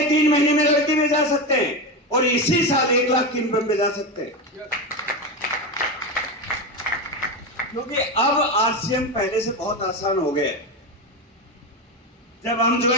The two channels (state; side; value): normal; both; correlation 0.17